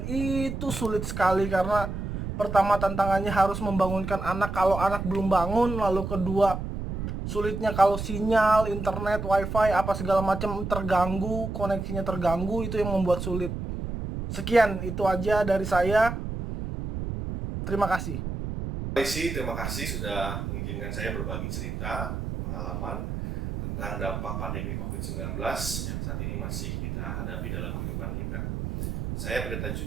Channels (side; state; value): right; noise; rumble, 5 dB below the sound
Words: itu sulit sekali, karena pertama tantangannya harus membangunkan anak kalau anak belum bangun, lalu kedua sulitnya kalau sinyal, internet, wifi, apa segala macam terganggu, koneksinya terganggu, itu yang membuat sulit. Sekian, itu aja dari saya. Terima kasih. Terima kasih sudah mengizinkan saya berbagi cerita, pengalaman tentang dampak pandemi COVID-19 yang saat ini masih kita hadapi dalam kehidupan kita. Saya Pendeta